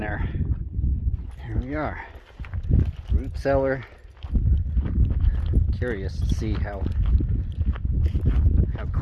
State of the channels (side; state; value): both; identical; correlation 1.00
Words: Here we are, root cellar. Curious to see how